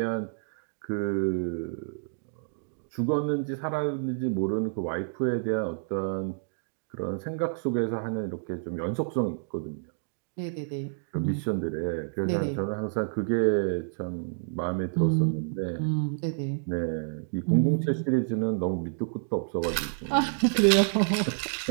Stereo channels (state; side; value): silent; left; digital silence